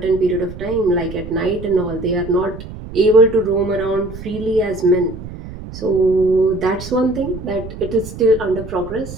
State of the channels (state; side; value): noise; right; rumble, 12 dB below the sound